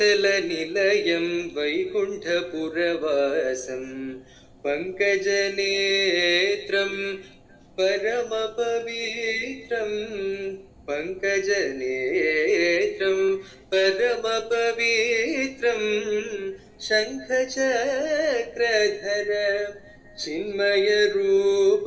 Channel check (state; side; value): identical; both; correlation 1.00